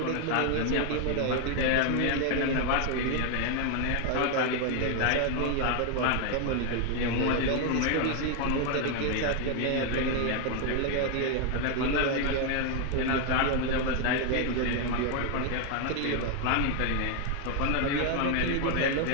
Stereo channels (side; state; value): both; different; correlation 0.01